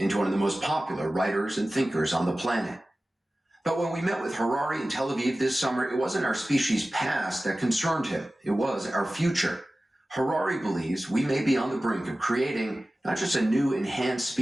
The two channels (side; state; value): both; normal; correlation 0.96